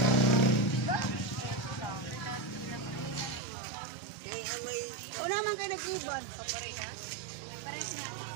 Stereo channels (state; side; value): drops out; left; at 3.4 s